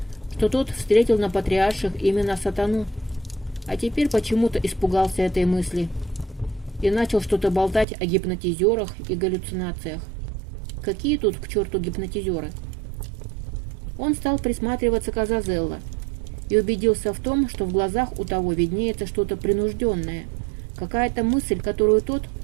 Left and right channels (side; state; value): left; drops out; at 7.9 s